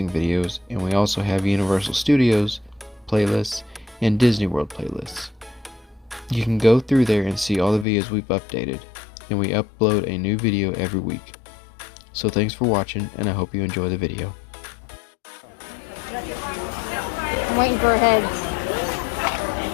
videos, and we also have Universal Studios playlists and Disney World playlists. You can go through there and see all the videos we've updated, and we upload a new video every week. So thanks for watching, and I hope you enjoy the video. I'm waiting for a head.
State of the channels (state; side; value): drops out; right; at 7.9 s